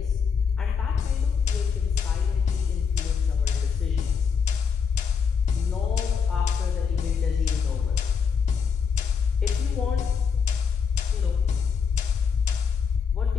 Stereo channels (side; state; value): right; quieter; 6.3 dB